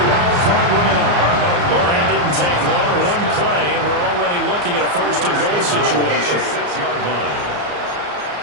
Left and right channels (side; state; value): left; late; 34 ms